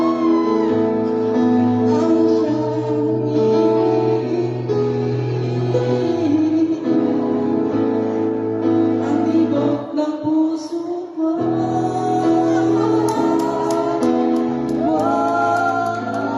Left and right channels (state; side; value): identical; both; correlation 1.00